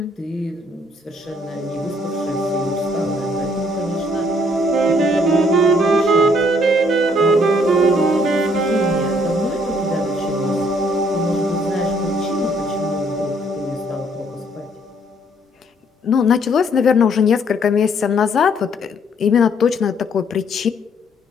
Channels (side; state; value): both; normal; correlation 0.66